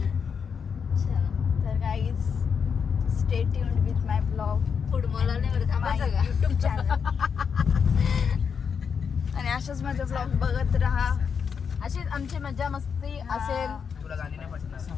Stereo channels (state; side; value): quieter; right; 6.5 dB